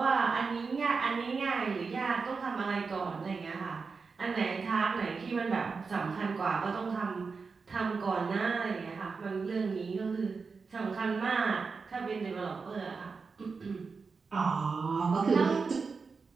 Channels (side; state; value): left; quieter; 4.8 dB